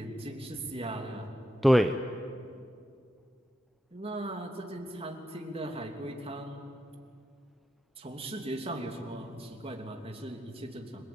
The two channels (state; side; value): normal; both; correlation 0.85